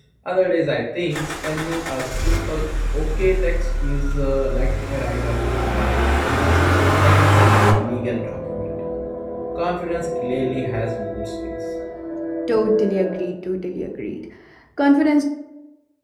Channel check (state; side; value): identical; both; correlation 1.00